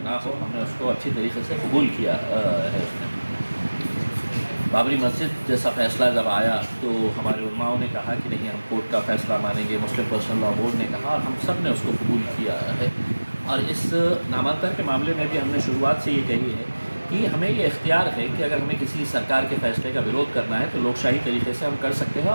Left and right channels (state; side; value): inverted; both; correlation -1.00